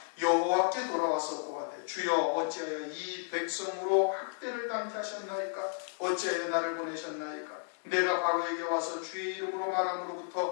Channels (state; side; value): silent; right; digital silence